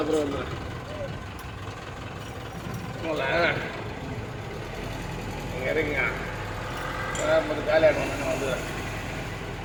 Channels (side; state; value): both; identical; correlation 1.00